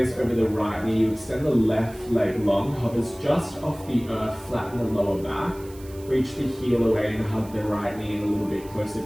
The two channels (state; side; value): noise; right; hiss, 22 dB below the sound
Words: over the right knee. You extend the left leg long, hovers just off the earth, flatten the lower back, reach the heel away and hug the right knee in a little bit closer.